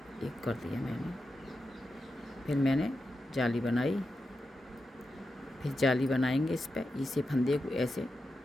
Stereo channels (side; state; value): both; normal; correlation 0.89